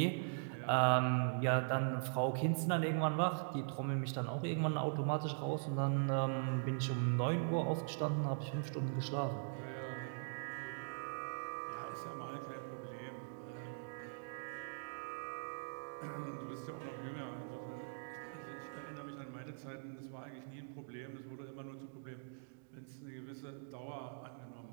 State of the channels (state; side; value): silent; left; digital silence